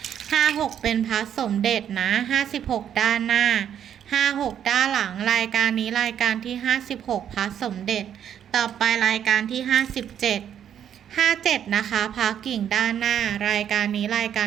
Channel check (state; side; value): quieter; left; 9.4 dB